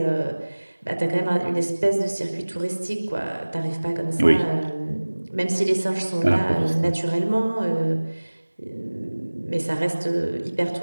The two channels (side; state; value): both; inverted; correlation -1.00